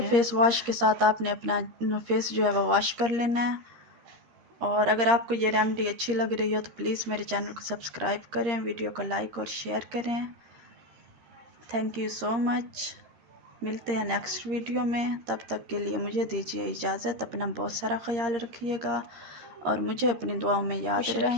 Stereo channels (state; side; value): late; left; 13 ms